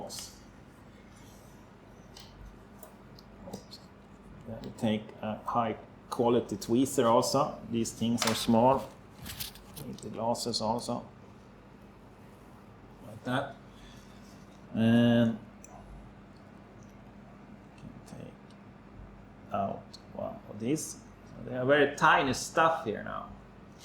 Then we take a high quality tweezer also. These things are small. Need the glasses also. Like that. And take out one of these. So they are very tiny stuff here now.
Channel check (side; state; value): both; identical; correlation 1.00